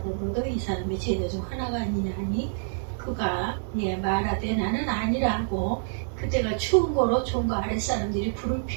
너도 이 사람의 제자 중 하나가 아니냐 하니, 그가 말하되 나는 아니라 하고, 그때가 추운 거로 종과 아랫사람들이 불을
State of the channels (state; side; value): silent; left; digital silence